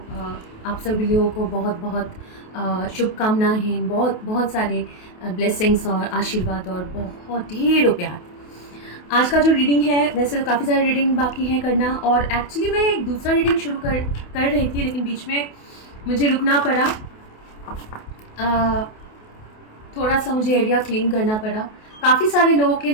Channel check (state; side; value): late; right; 28 ms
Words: आप सभी लोगों को बहुत बहुत शुभकामनाएँ, बहुत बहुत सारे ब्लेसिंग्स और आशीर्वाद और बहुत ढेरों प्यार। आज का जो रीडिंग है, वैसे तो काफ़ी सारे रीडिंग बाकी हैं करना, और एक्चुअली मैं एक दूसरा रीडिंग शुरू कर रही थी, लेकिन बीच में मुझे रुकना पड़ा। थोड़ा सा मुझे एरिया क्लीन करना पड़ा काफ़ी सारे लोगों के